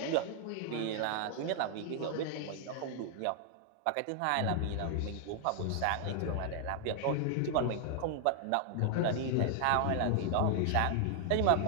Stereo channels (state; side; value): different; both; correlation 0.00